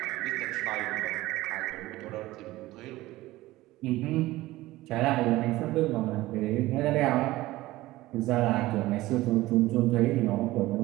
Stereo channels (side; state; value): left; quieter; 17.7 dB